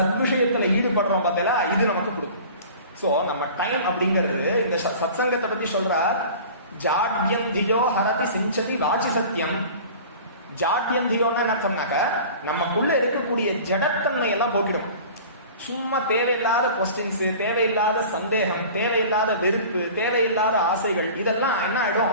ஈடுபடுறோம் பார்த்தா இது நமக்கு கொடுக்கும். சோ நம்ம டைம் அப்படிங்கிறது இந்த சத்சங்கத்தை பத்தி சொல்ற, ஜாட்யந்தியோ ஹரதி சிஞ்சதி வாசி சத்தியம். ஜாட்யந்தியோன்னா என்ன அர்த்தம்னாக்க நமக்குள்ள இருக்கக்கூடிய ஜடத்தன்மை எல்லாம் போக்கிடும். சும்மா தேவையில்லாத கொஸ்டின்ஸ், தேவையில்லாத சந்தேகம், தேவையில்லாத வெறுப்பு, தேவையில்லாத ஆசைகள், இதெல்லாம் என்ன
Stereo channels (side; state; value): both; inverted; correlation -0.41